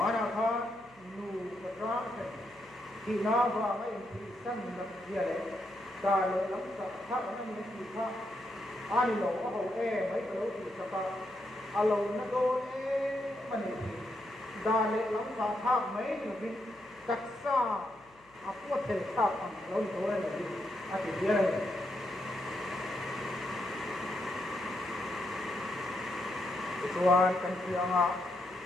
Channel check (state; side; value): noise; left; hum, 30 dB below the sound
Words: kha nu patra ki na ba mai ti san na dia le ta le lam sa tha na ni ti kha ani lo a ho e mai lo ti sa pa a lo na do e mani da le lam sa tha mai ni bi tak sa a pu the tha am lo to le ni a ti dia le tuan kan ti anga